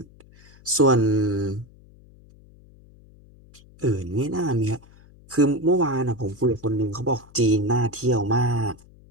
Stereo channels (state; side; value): noise; left; hum, 25 dB below the sound